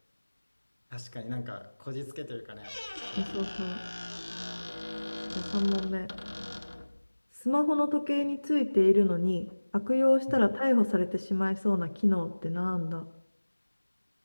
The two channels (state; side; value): inverted; both; correlation -1.00